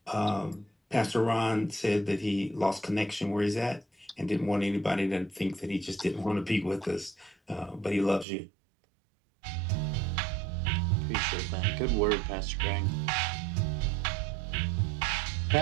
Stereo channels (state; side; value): drops out; left; at 8.2 s